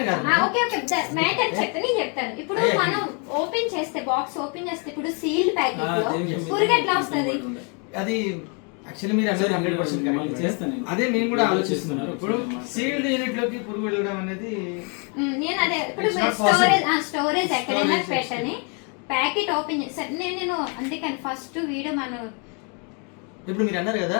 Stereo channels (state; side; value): quieter; right; 36.4 dB